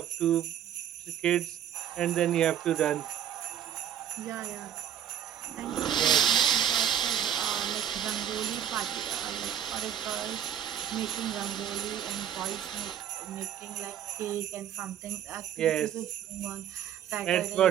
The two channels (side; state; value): left; quieter; 9.8 dB